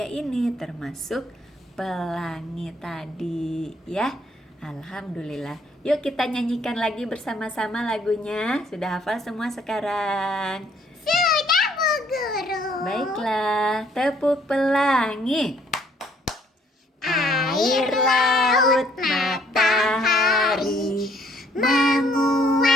ini, termasuk pelangi tadi, ya. Alhamdulillah. Yuk kita nyanyikan lagi bersama-sama lagunya. Sudah hafal semua sekarang? Sudah, Bu Guru. Baiklah, tepuk pelangi. Air, laut, matahari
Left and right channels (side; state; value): both; normal; correlation 0.64